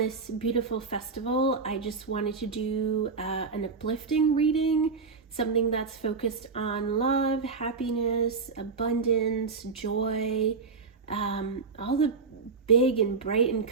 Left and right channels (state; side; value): quieter; left; 4.8 dB